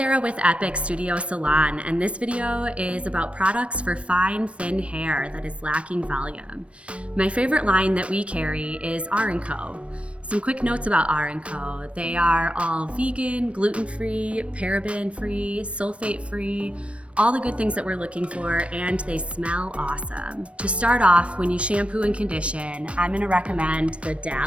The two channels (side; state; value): left; late; 0.061 ms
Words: with Epoch Studio Salon, and this video is about products for fine, thin hair that is lacking volume. My favorite line that we carry is R+Co. Some quick notes about R+Co. They are all vegan, gluten-free, paraben-free, sulfate-free, all the good things that we're looking for, and they smell awesome. To start off, when you shampoo and condition, I'm gonna recommend the